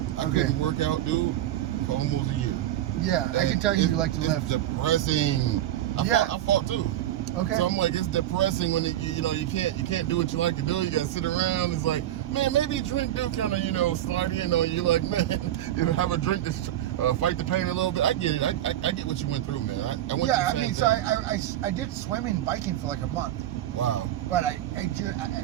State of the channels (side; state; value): left; quieter; 12.8 dB